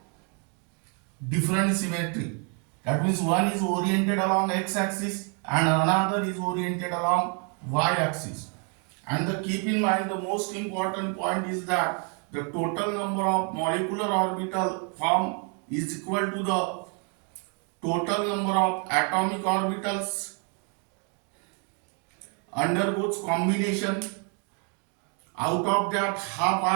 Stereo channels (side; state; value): left; quieter; 38.5 dB